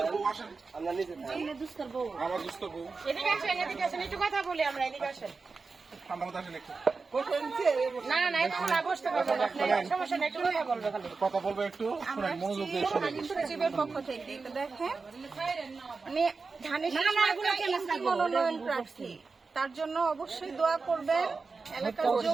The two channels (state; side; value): quieter; left; 4.4 dB